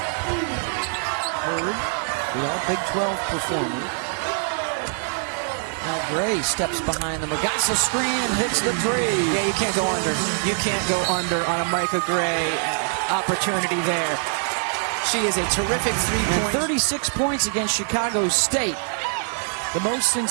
Hurd, the all-Big 12 performer. Now Gray steps behind the Magassa screen and hits the 3. Yeah, you can't go under. You can't go under on a Micah Gray opportunity there. She is a terrific 3-point. 36 points against Chicago State. The most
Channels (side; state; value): left; silent; digital silence